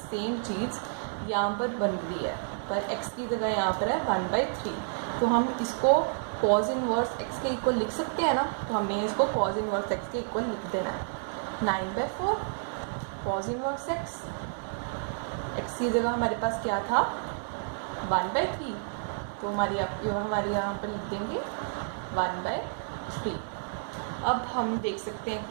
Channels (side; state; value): left; silent; 58 dB below the other